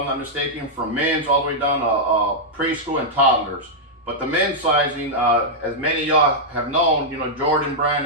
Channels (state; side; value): normal; both; correlation -0.07